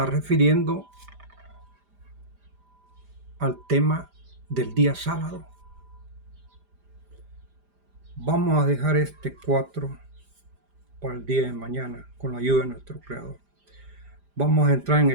refiriendo al tema del día sábado. Vamos a dejar este 4 para el día de mañana con la ayuda de nuestro Creador. Vamos a entrar en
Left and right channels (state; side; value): late; left; 5.0 ms